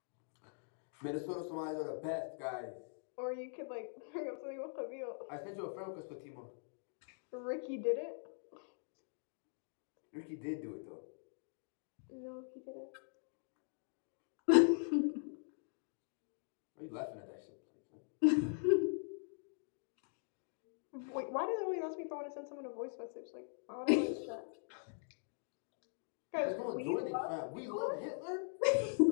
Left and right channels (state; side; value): silent; right; digital silence